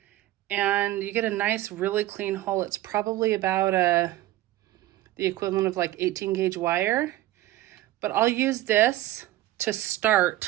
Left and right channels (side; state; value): left; quieter; 15.6 dB